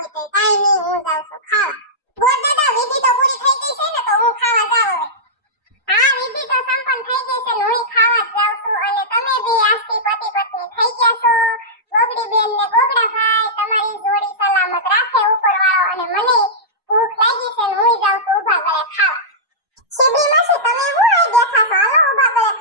તો કાંઈ નહીં. હું જાઉં છું ખાવા. ગોળ દાદા વિધિ તો પૂરી થઈ ગઈ છે ને તો હું ખાવા જાઉં હવે. હા વિધિ તો સંપન્ન થઈ ગઈ છે ને હું ખાવા જ જાઉં છું. અને તમે બે આજથી પતિ પત્ની થઈ ગયા છો. ગોગડી બેન ને ગોગડા ભાઈ તમારી જોડી સલામત રાખે ઉપરવાળો. અને મને ભૂખ લાગી છે ને હું જાઉં છું ઊભા ગળે ખાવા. શિબરી માસી તમે હું આ બેઠા છો? હાલો ઊભા ગળે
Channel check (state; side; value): normal; both; correlation -0.15